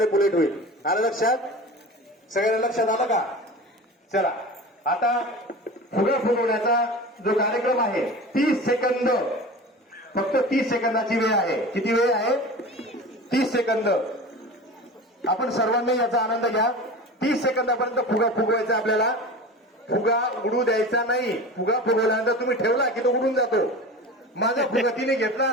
होईल. आलं लक्षात? सगळ्यांना लक्षात आलं का? चला आता फुगा फुगवण्याचा जो कार्यक्रम आहे 30 सेकंद, फक्त 30 सेकंदाची वेळ आहे. किती वेळ आहे? 30 सेकंद. आपण सर्वांनी याचा आनंद घ्या. 30 सेकंदापर्यंत फुगा फुगवायचा आपल्याला. फुगा उडू द्यायचा नाही. फुगा फुगवल्यानंतर तुम्ही ठेवला की तो उडून जातो. माझा फुगा तिने घेतला,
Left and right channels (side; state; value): both; normal; correlation 0.33